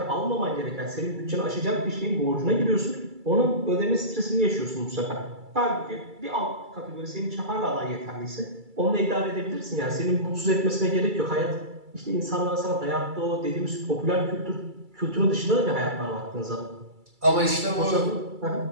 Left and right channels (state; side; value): late; left; 2.3 ms